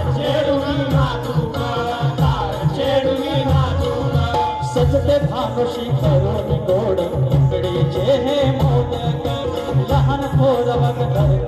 छेडूनी नाजूक, तार छेडूनी नाजूक. सजते भानुशी करून गोड इकडेचे हे मोदक, लहान थोर वग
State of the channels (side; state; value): both; identical; correlation 1.00